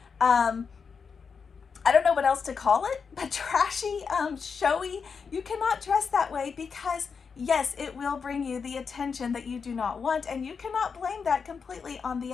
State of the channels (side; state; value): right; quieter; 5.7 dB